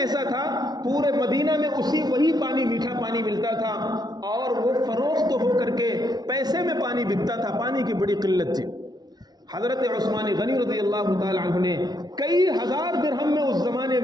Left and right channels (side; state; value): left; late; 0.19 ms